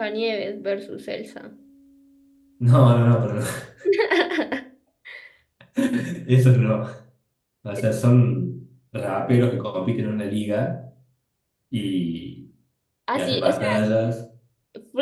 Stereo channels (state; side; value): identical; both; correlation 1.00